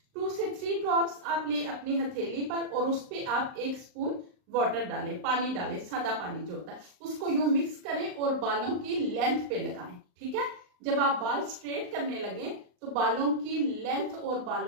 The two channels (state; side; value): late; left; 39 ms